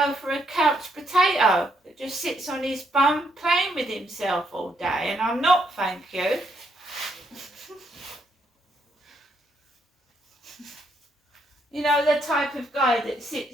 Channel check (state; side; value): normal; both; correlation 0.75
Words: for a couch potato that just sits on his bum playing with himself all day, and I'm not, thank you. You know, the type of guy that sits,